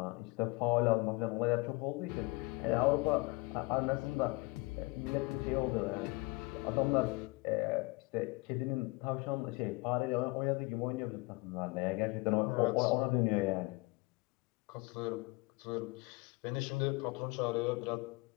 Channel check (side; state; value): right; quieter; 25.3 dB